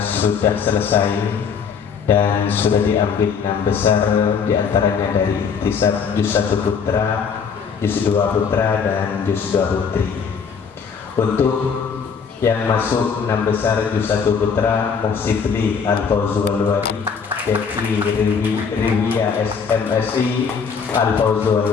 sudah selesai dan sudah diambil 6 besar, diantaranya dari Ikhtisab Juz 1 Putra, Juz 2 Putra, dan Juz 2 Putri. Untuk yang masuk 6 besar Juz 1 Putra, Muhsibli Al-Fawzu Al-Wari, Devi Riwiyah SMSI Al-Fawzu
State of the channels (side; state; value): right; quieter; 6.2 dB